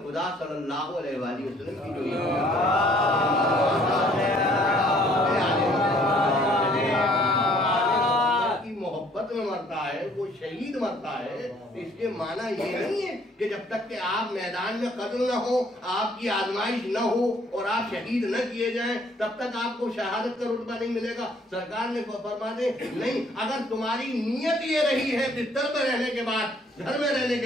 خدا صلی اللہ علیہ وآلہ وسلم کی جو محبت میں مرتا ہے وہ شہید مرتا ہے، اس کے معنی یہ نہیں ہے کہ جب تک کہ آپ میدان میں قتل نہ ہو، آپ کی آزمائش نہ ہو اور آپ شہید نہ کیے جائیں تب تک آپ کو شہادت کا رتبہ نہیں ملے گا۔ سرکار نے فرما دے نہیں، اگر تمہاری نیت یہ رہی ہے بستر میں رہنے کے بعد، گھر میں رہنے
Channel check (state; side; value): normal; both; correlation 0.61